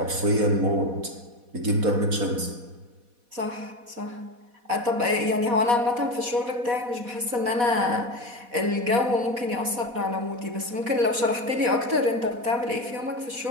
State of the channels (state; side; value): late; left; 4.1 ms